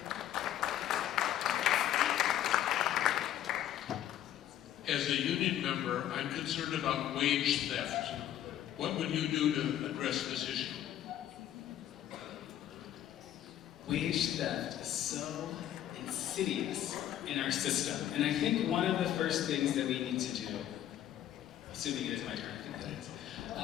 As a union member, I'm concerned about wage theft. What would you do to address this issue? Wage theft is so insidious in our system. And I think one of the first things that we need to do, assuming it is my turn, I think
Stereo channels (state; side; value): quieter; right; 11.6 dB